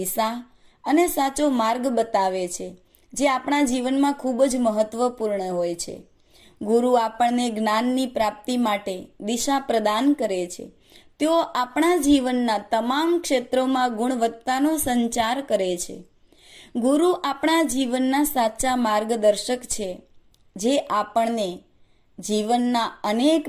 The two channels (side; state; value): both; identical; correlation 1.00